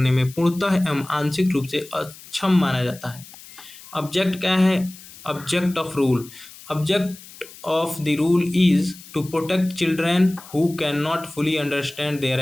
में पूर्णतः एवं आंशिक रूप से अक्षम माना जाता है। ऑब्जेक्ट क्या है? Object of rule. Object of the rule is to protect children who cannot fully understand their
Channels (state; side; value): noise; left; hiss, 19 dB below the sound